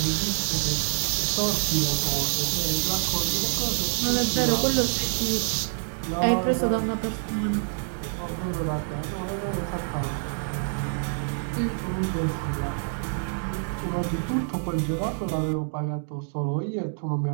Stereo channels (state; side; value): silent; left; digital silence